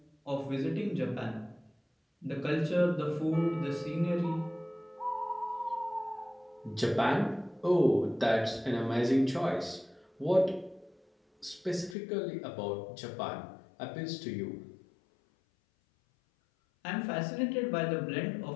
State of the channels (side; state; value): right; drops out; at 12.0 s